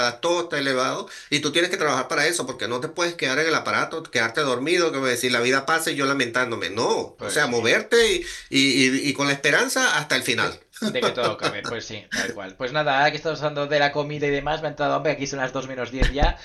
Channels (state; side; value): identical; both; correlation 1.00